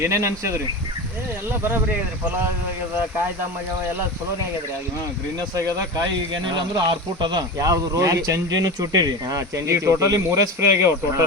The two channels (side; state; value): both; normal; correlation 0.27